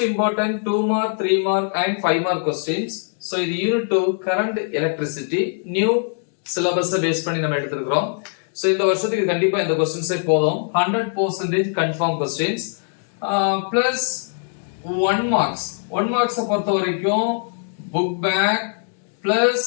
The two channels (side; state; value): right; silent; digital silence